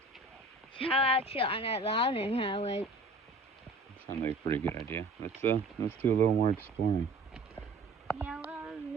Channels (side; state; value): left; quieter; 3.0 dB